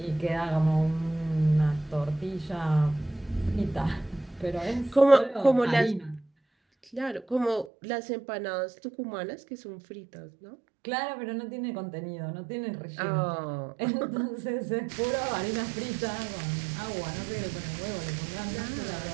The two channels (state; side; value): drops out; left; at 7.7 s